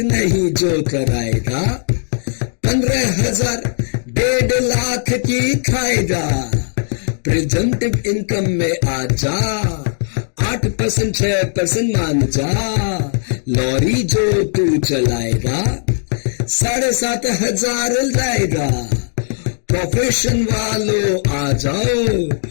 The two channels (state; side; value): silent; right; digital silence